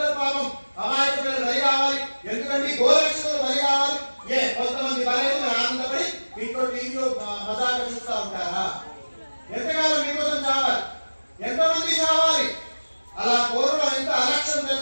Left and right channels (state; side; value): inverted; both; correlation -1.00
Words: పాపం అమాయక పిల్లలు బలి కావాలి, ఎందుకంటే గోరక్షకులు బలి కావాలి. కొంతమంది బలైన ఆనందపడి ఇంట్లో టీవీలో మజాగా చూస్తూ ఉంటారా? ఎంతకాలం మీకోసం చావాలి? ఎంతమంది చావాలి? అలా కోరులో ఎంత అలక్ష్యం